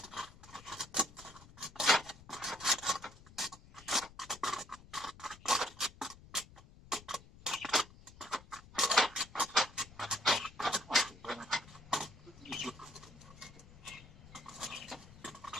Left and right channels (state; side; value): noise; left; rumble, 20 dB below the sound